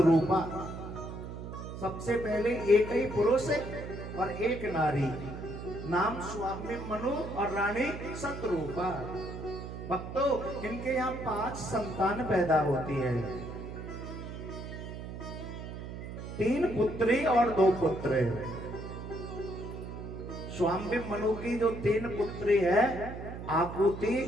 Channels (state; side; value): noise; right; hum, 9 dB below the sound